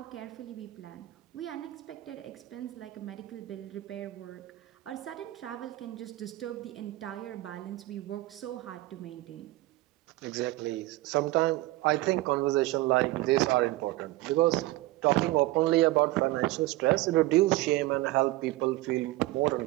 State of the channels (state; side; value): quieter; left; 18.3 dB